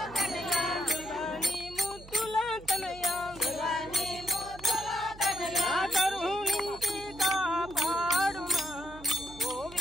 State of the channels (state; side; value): noise; right; hum, 18 dB below the sound